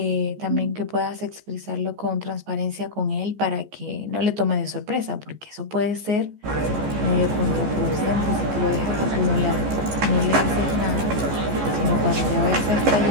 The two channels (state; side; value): late; left; 14 ms